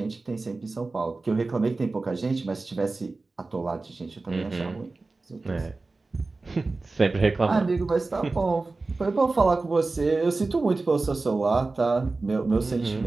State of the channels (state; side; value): quieter; left; 3.5 dB